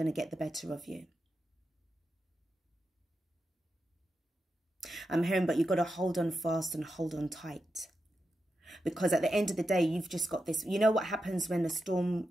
to get the better of you. I'm hearing, but you've got to hold on fast and hold on tight. Because at the end of the day, you've just got this. You know what happens when the storm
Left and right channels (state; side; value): normal; both; correlation 0.88